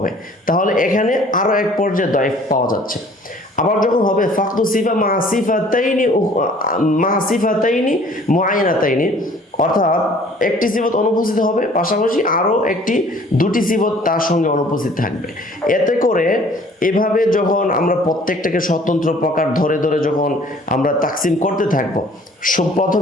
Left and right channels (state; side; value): normal; both; correlation 0.53